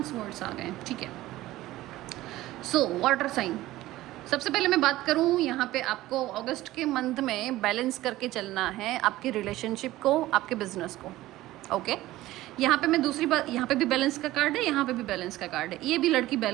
स्वर्ड्स आ गए, ठीक है। सो वाटर साइन, सबसे पहले मैं बात करूं, यहाँ पे आपको अगस्त के मंथ में बैलेंस करके चलना है आपके रिलेशनशिप को, आपके बिजनेस को, ओके। यहाँ पे मैं दूसरी बात, यहाँ पे भी बैलेंस का कार्ड है, यहाँ पे भी बैलेंस का कार्ड है। ये भी लड़की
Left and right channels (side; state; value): left; quieter; 16.5 dB